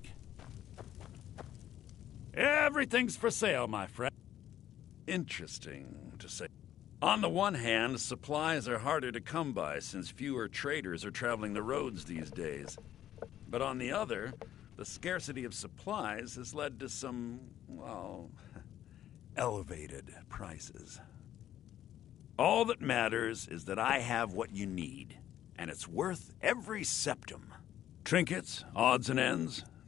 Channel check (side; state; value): right; quieter; 11.7 dB